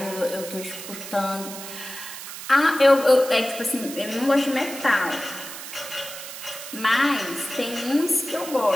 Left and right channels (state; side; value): noise; right; hiss, 11 dB below the sound